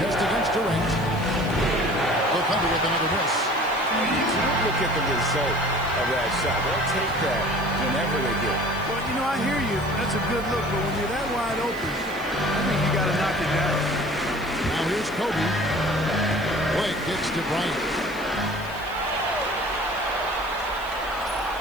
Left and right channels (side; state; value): right; noise; hiss, 21 dB below the sound